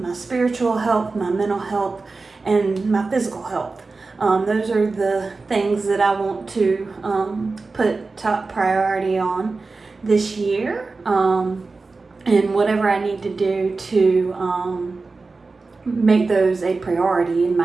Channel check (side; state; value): left; quieter; 3.9 dB